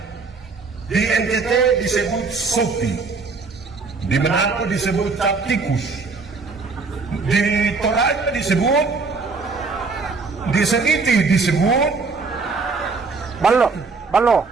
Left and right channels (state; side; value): quieter; left; 4.4 dB